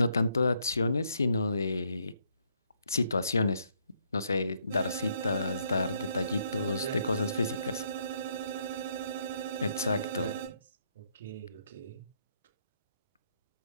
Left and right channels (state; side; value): inverted; both; correlation -0.72